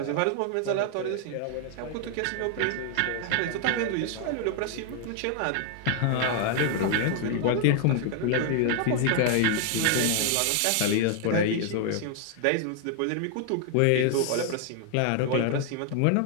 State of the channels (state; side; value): different; both; correlation 0.00